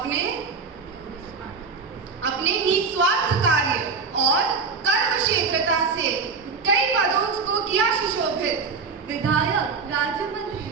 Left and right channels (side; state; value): left; quieter; 4.9 dB